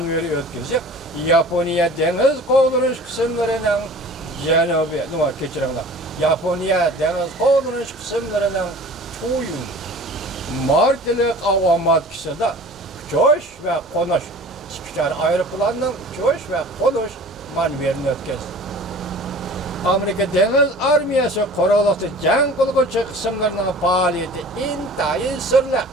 gezdi. Japonya deniz kaldırış kısımlarının Japonya deniz kaldırış kısımlarının çoğu martilik avamat kısımda uçuş ve konuş. Çıkışar aeroplanının uçuş ve konuş maneviyatını ötkezi. Amerika Deniz Armiyası kuruluşu cenk kılıcı kısımlarının faaliyeti intayın sırlı.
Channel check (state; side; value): normal; both; correlation 0.43